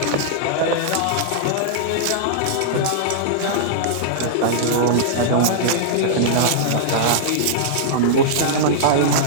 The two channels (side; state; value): both; different; correlation -0.02